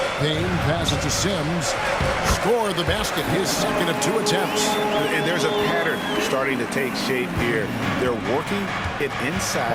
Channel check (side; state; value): both; identical; correlation 1.00